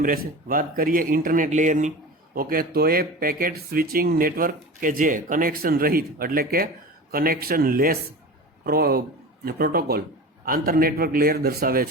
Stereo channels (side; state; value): both; normal; correlation 0.32